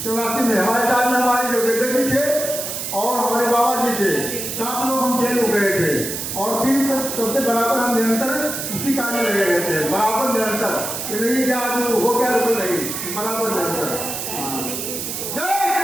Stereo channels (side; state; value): right; noise; hiss, 5 dB below the sound